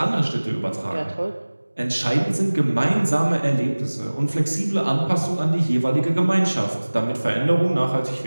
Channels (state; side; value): inverted; both; correlation -1.00